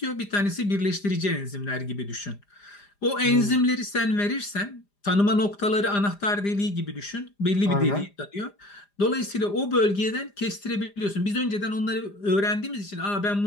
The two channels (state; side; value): late; right; 5.0 ms